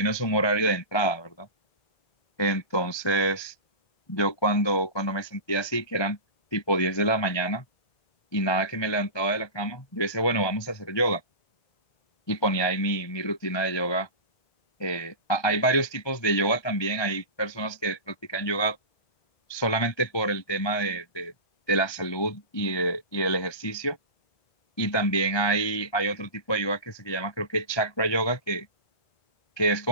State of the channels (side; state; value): right; late; 1.3 ms